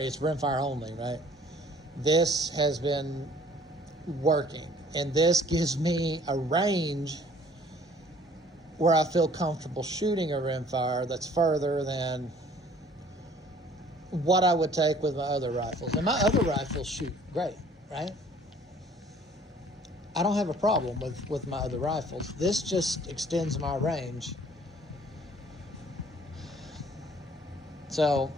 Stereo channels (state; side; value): normal; both; correlation 0.55